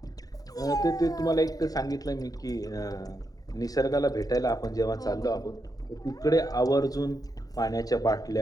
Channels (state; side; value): late; right; 0.18 ms